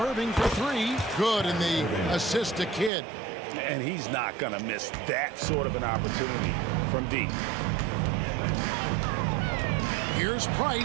for 3. Good in the assist to Kidd. And he's not going to miss that sort of an opportunity from deep. Here's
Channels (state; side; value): drops out; left; at 2.9 s